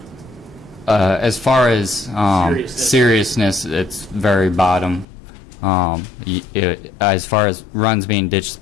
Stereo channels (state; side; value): drops out; right; at 5.1 s